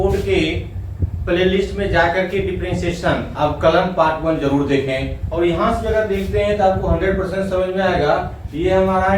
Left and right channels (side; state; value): both; identical; correlation 1.00